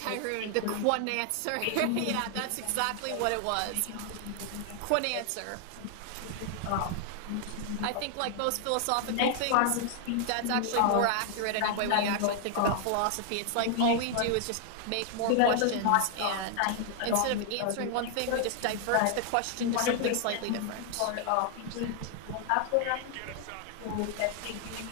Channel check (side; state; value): both; different; correlation 0.00